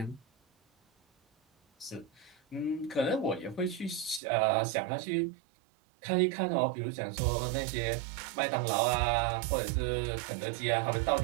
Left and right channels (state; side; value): drops out; left; at 4.2 s